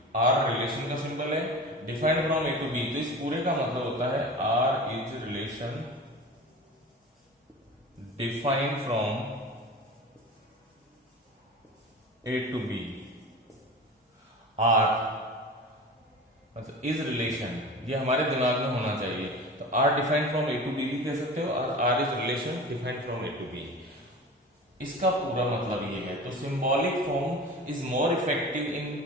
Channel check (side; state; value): both; normal; correlation 0.34